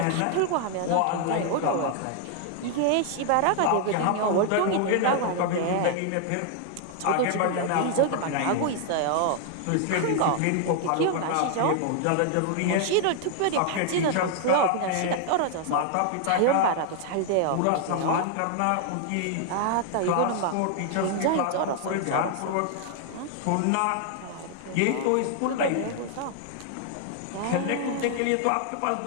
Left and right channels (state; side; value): different; both; correlation 0.00